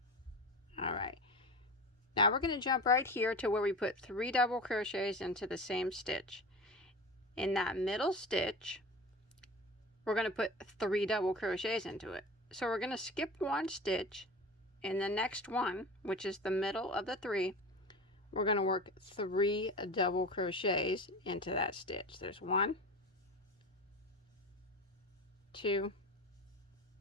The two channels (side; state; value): both; normal; correlation 0.31